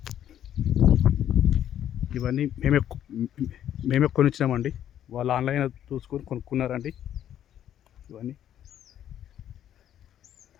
ఇవన్నీ మేమే కొనిచ్చినామండి. వాళ్ళు ఆన్లైన్ చూసుకొని కొనుక్కున్నారండి. ఇవన్నీ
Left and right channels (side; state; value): right; quieter; 10.7 dB